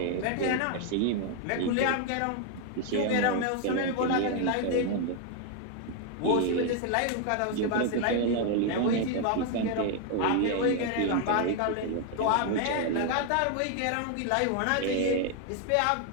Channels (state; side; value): different; both; correlation 0.01